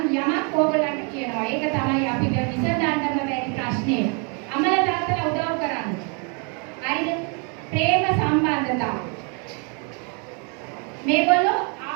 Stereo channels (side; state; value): left; quieter; 36.4 dB